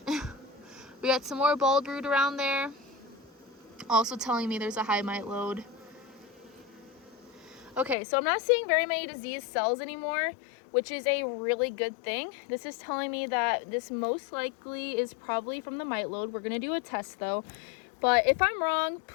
We got some more bald brood around there, also telling me there's a high mite load. Okay, so I'm not seeing very many diseased cells anymore, which is a really good thing. This is telling me that this most likely is probably from the mite load. We're gonna do a test though. But if I'm wrong,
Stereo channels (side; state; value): right; drops out; at 8.0 s